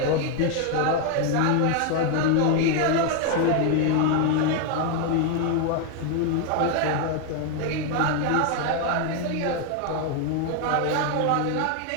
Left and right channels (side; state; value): both; different; correlation 0.01